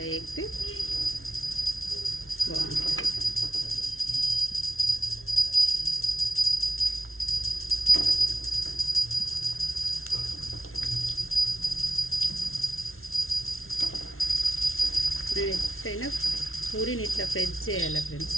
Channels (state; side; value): late; right; 0.62 ms